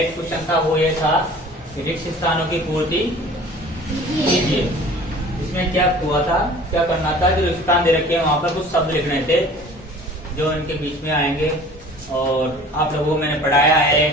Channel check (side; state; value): both; normal; correlation 0.46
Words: क्वेश्चन था वो ये था, रिक्त स्थानों की पूर्ति कीजिए। इसमें क्या हुआ था, क्या करना था, जो रिक्त स्थान दे रखे हैं वहां पर कुछ शब्द लिखने थे जो इनके बीच में आएंगे, और आप लोगों को मैंने पढ़ाया है,